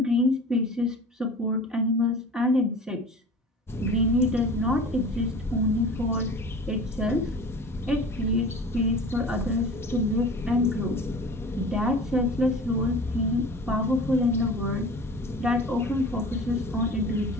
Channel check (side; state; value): both; normal; correlation 0.39